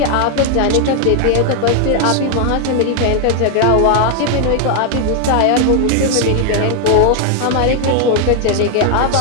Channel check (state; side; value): different; both; correlation 0.00